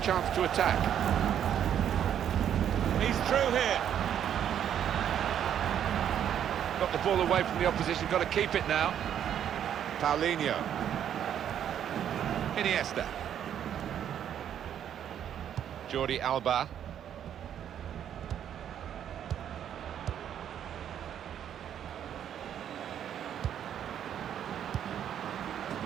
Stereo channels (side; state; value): left; quieter; 9.6 dB